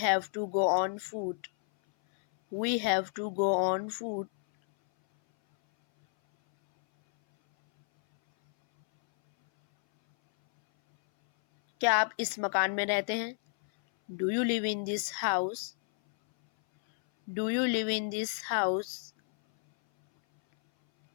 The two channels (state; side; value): silent; right; 57 dB below the other